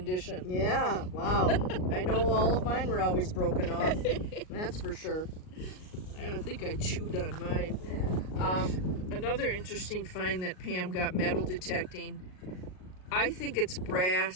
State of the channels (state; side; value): late; right; 38 ms